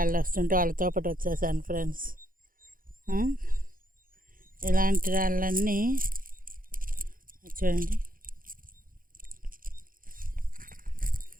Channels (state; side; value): late; left; 0.41 ms